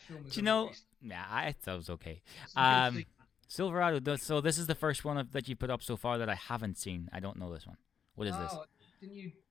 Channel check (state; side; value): quieter; right; 7.5 dB